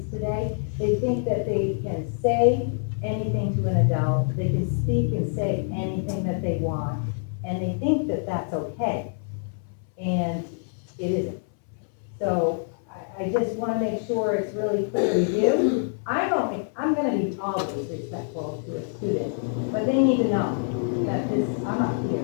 today. They think that they can say anything to an adult, they can speak and say anything that they want, and they think that that's okay. And it isn't. So I just want to make sure it's really clear to you. I'm going to be always respectful to a student, but they need to know that I'm up here.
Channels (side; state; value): right; silent; 61 dB below the other